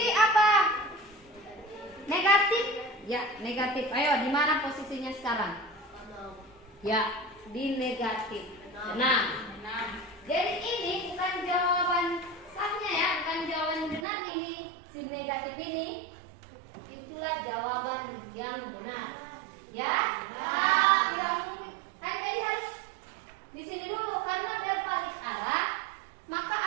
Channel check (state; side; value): drops out; left; at 14.1 s